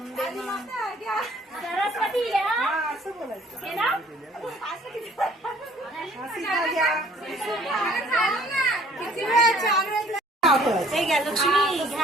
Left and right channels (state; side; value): normal; both; correlation 0.57